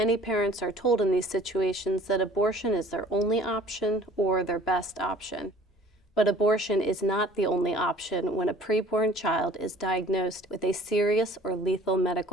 parents are told in these situations that abortion is their only option or their best option. But abortion is not the only option when a preborn child is diagnosed with a serious or lethal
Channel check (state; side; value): normal; both; correlation 0.50